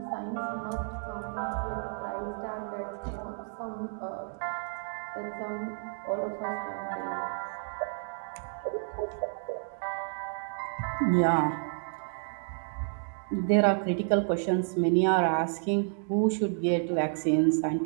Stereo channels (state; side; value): silent; left; 57 dB below the other